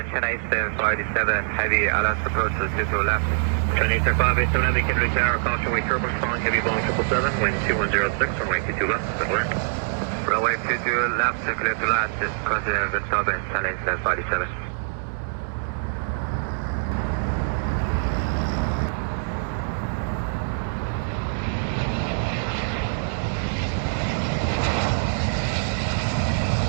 Chennai 757, heavy Alice approach to 22 left. Chennai 757, we can reach our caution way turbulence following heavy Boeing 777, wind 2106, runway 22 left, clear. Runway 22 left, clear to last, is considered wind turbulence, Chennai 757.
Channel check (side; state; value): left; silent; 62 dB below the other